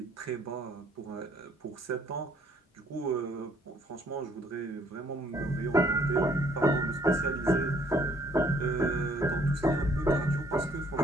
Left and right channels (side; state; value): both; normal; correlation 0.63